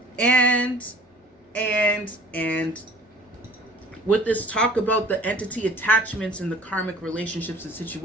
And with this talk about the entity attachments and the karmic relationships and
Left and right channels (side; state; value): both; normal; correlation 0.50